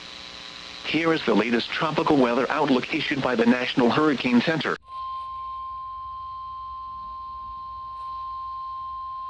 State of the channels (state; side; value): identical; both; correlation 1.00